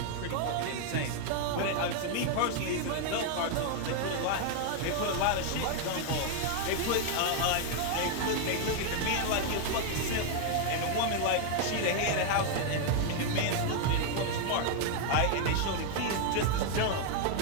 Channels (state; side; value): different; both; correlation 0.00